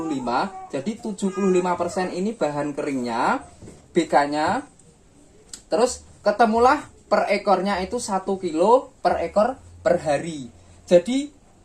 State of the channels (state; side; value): identical; both; correlation 1.00